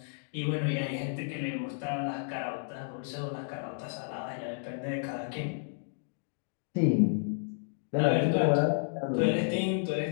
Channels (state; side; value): silent; right; digital silence